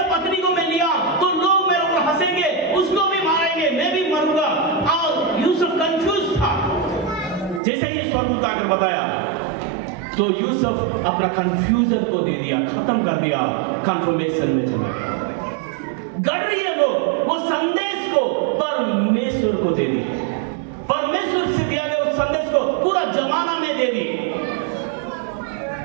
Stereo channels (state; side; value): drops out; left; at 7.6 s